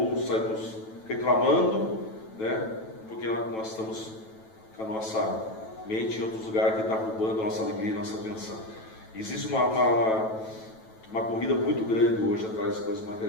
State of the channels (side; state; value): right; late; 9.1 ms